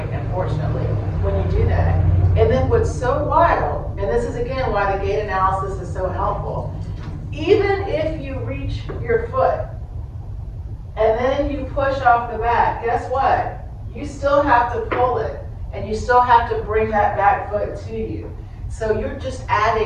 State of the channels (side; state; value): both; identical; correlation 1.00